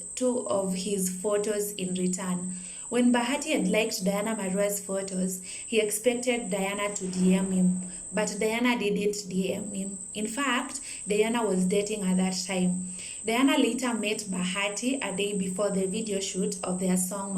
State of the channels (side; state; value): both; identical; correlation 1.00